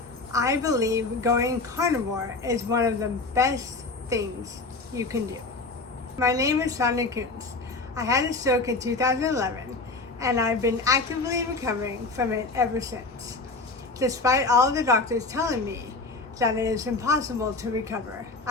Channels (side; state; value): right; quieter; 3.5 dB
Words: I believe going carnivore is one of the best things you can do. My name is Sonia. I had a stroke in 2011 and I've been actively recovering from it ever since, despite all the doctors telling me that it is impossible to recover